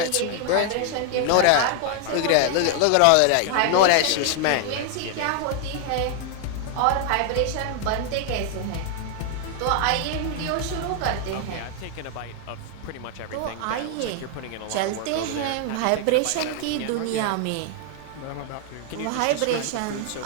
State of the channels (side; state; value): both; different; correlation 0.00